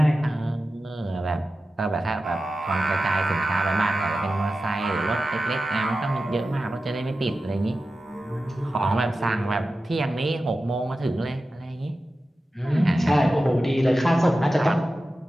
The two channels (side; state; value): both; normal; correlation 0.93